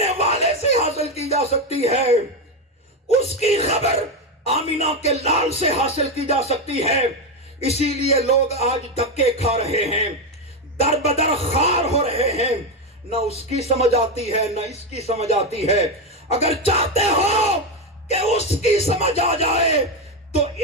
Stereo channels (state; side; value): normal; both; correlation 0.10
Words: والے سے حاصل کی جا سکتی ہے. اس کی خبر آمینہ کے لال سے حاصل کی جا سکتی ہے. اسی لیے لوگ آج دھکے کھا رہے ہیں، در بدر خار ہو رہے ہیں، نہ اس کی سمجھ آتی ہے نہ اس کی سمجھ آتی ہے۔ اگر چاہتے ہو کہ اس کی سمجھ آ جائے تو